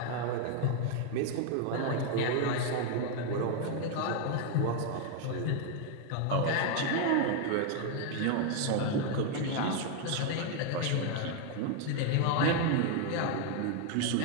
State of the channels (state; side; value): different; both; correlation 0.01